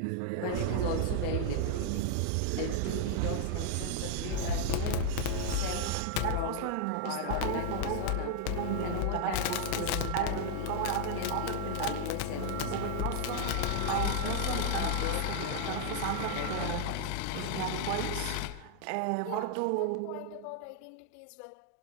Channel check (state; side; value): different; both; correlation -0.01